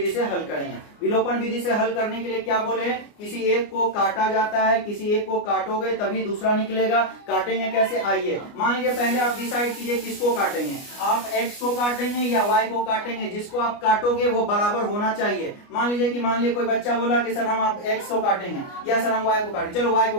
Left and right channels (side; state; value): right; late; 29 ms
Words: से हल करेंगे। विलोपन विधि से हल करने के लिए क्या बोले, किसी एक को काटा जाता है, किसी एक को काटोगे तभी दूसरा निकलेगा। काटेंगे कैसे, आइए मान लीजिए पहले आप डिसाइड कीजिए किसको काटेंगे, आप x को काटेंगे या y को काटेंगे, जिसको आप काटोगे वो बराबर होना चाहिए। मान लीजिए कोई बच्चा बोला कि सर हम आप x को काटेंगे या सर हम y को काटेंगे, चलो y को